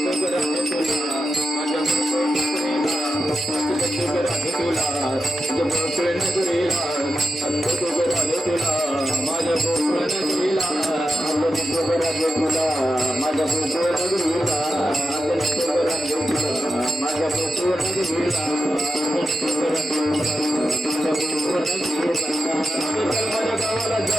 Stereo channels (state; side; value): normal; both; correlation 0.89